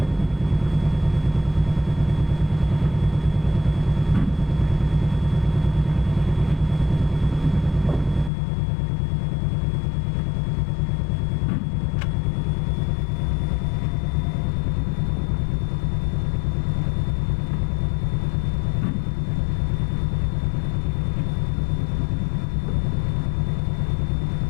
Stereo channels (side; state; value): right; drops out; at 8.3 s